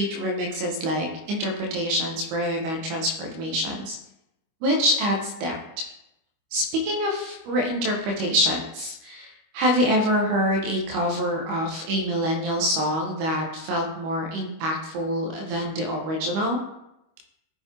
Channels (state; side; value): late; left; 25 ms